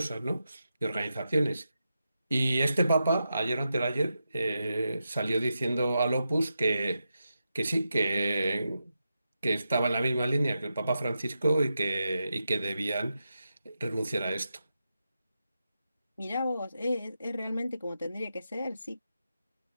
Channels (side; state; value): both; inverted; correlation -0.88